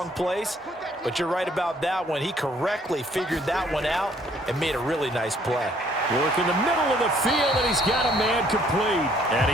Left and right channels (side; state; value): both; normal; correlation 0.63